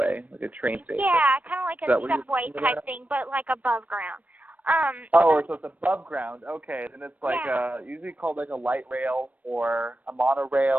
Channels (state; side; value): late; left; 0.073 ms